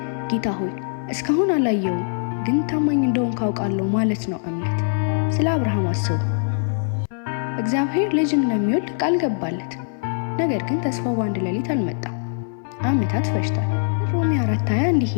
ጌታ ሆይ እስካሁን አላየውም፣ ግን ታማኝ እንደሆን ካውቃለሁ ማለት ነው እምነት። ስለ አብርሃም አስቡ። እግዚአብሔር ልጅ እንደሚወልድ ቃል ገባለት። ነገር ግን ተስፋው በአንድ ሌሊት አልመጣም፣ ዓመታት ፈጅቷል። ሮሜ 4:20 እንዲህ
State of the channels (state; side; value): silent; right; 64 dB below the other